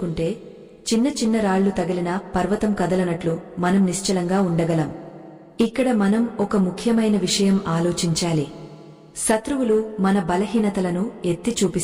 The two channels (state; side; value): identical; both; correlation 1.00